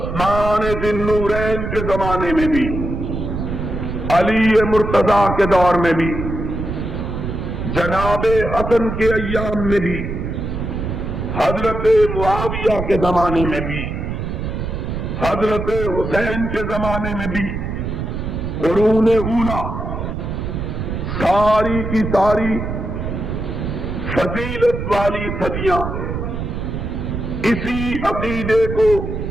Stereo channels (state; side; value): noise; right; rumble, 4 dB below the sound